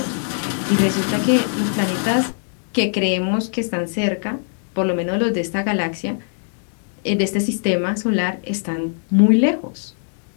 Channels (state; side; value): silent; right; digital silence